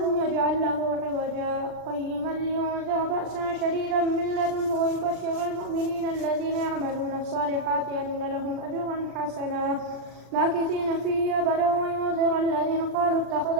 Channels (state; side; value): late; left; 39 ms